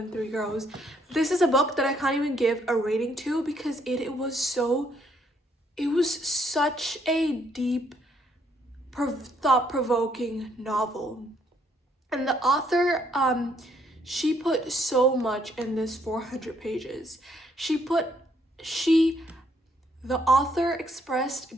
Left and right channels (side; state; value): both; normal; correlation 0.69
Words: Tree Grows. This is a book that I can't even give a rating to because it was such a deep, thought-provoking novel. And the author, she put so much in this 400 pages. The author